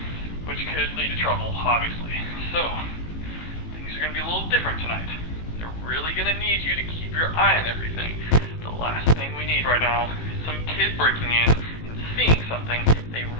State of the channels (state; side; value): late; right; 18 ms